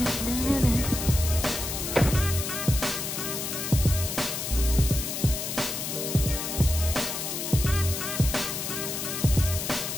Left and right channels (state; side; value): noise; left; hiss, 4 dB below the sound